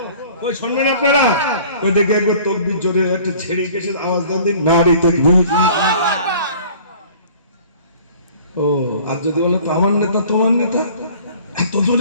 ওই শুনবেন আপনারা? ওই দেখে একবার তাকবীর জোরে একটা ছেড়ে গেছে আওয়াজ দেন দিন, নারী তাকবীর। ও আর যদি বলো তো আমার নেতা তোমার নেতা, এত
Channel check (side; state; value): both; inverted; correlation -0.49